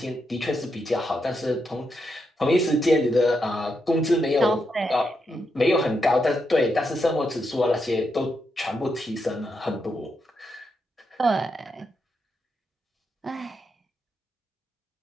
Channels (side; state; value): both; normal; correlation 0.83